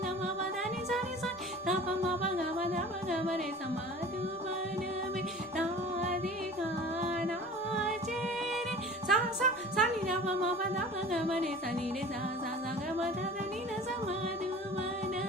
nama badani sani sani tapa ma baga bada baga bare samadhubana mera dikana jere sa sa sani nama ma bada baga bare sani re sa sa sa ga bada ni na samadhubana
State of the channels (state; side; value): normal; both; correlation 0.41